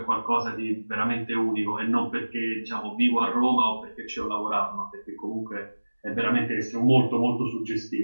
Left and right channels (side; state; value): both; inverted; correlation -1.00